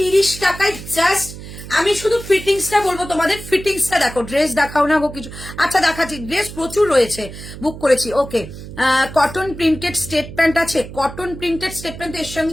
টাকায় জাস্ট। আমি শুধু ফিটিংসটা বলবো তোমাদের, ফিটিংসটা দেখো, ড্রেস দেখাও না গো কিছু, আচ্ছা দেখাচ্ছি, ড্রেস প্রচুর রয়েছে, বুক করেছি। ওকে, কটন প্রিন্টেড স্টেট প্যান্ট আছে, কটন প্রিন্টেড স্টেট প্যান্ট এর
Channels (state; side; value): noise; right; hum, 13 dB below the sound